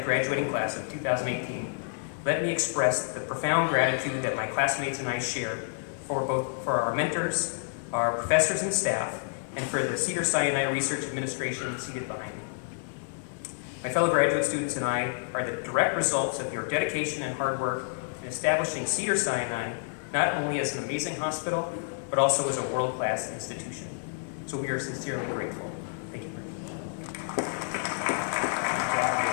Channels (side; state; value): right; silent; digital silence